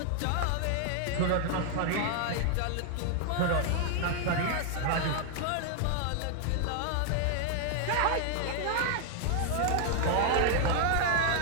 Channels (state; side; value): different; both; correlation 0.00